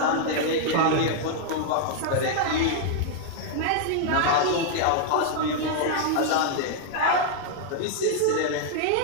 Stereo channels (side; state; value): both; different; correlation -0.01